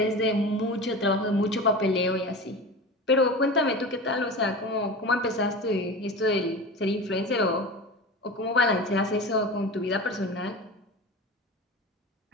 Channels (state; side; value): normal; both; correlation 0.31